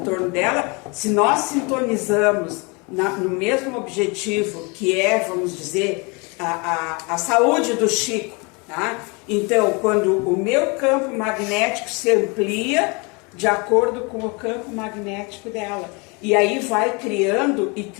dela. Se nós sintonizamos no mesmo objetivo, que é, vamos dizer, a saúde do Chico, tá? Então, quando o meu campo magnético se amplia de acordo com o campo magnético dela, e aí vai criando e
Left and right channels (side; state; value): right; quieter; 30.0 dB